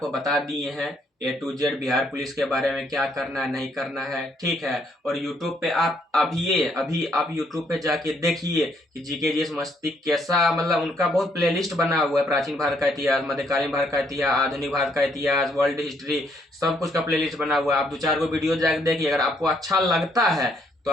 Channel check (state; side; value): normal; both; correlation 0.70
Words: बता दिए हैं A to Z Bihar police के बारे में, क्या करना है नहीं करना है, ठीक है। और YouTube पे आप अभी आप YouTube पे जाके देखिए कि जीके जीएस मस्ती कैसा, मतलब उनका बहुत प्लेलिस्ट बना हुआ है, प्राचीन भारत का इतिहास, मध्यकालीन भारत का इतिहास, आधुनिक भारत का इतिहास, वर्ल्ड हिस्ट्री, सब कुछ का प्लेलिस्ट बना हुआ है। आप 2-4 को वीडियो जाके देखिए, अगर आपको अच्छा लगता है तो